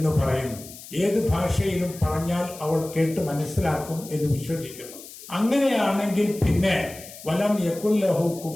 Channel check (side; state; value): left; noise; hiss, 16 dB below the sound